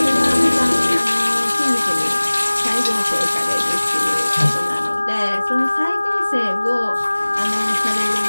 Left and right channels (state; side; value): inverted; both; correlation -1.00